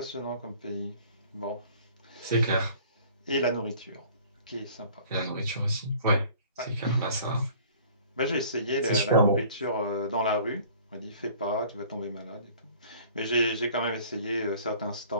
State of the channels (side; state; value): both; inverted; correlation -0.51